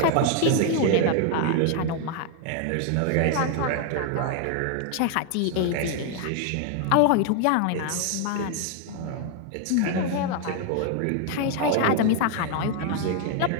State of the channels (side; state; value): both; different; correlation 0.00